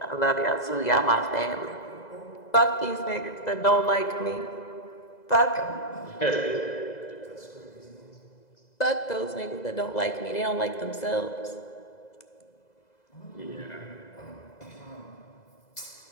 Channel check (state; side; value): late; right; 2.0 ms